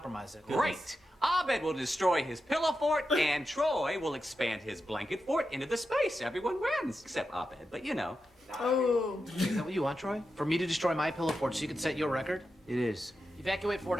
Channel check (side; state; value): both; normal; correlation 0.89